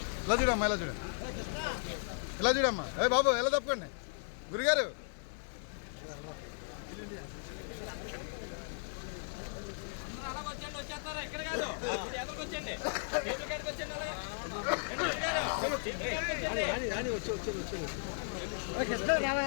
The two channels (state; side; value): silent; right; digital silence